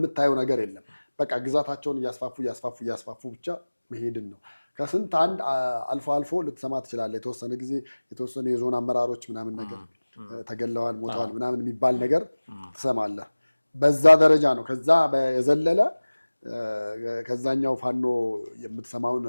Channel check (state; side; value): inverted; both; correlation -1.00